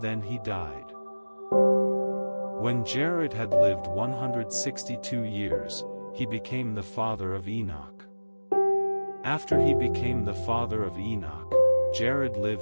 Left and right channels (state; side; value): inverted; both; correlation -1.00